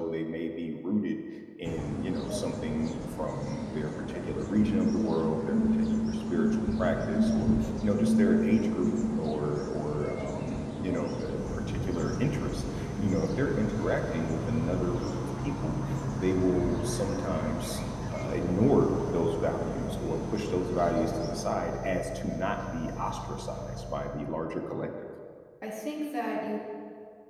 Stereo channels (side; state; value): both; identical; correlation 1.00